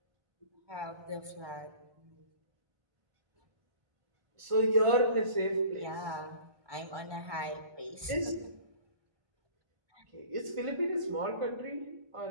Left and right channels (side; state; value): left; late; 1.3 ms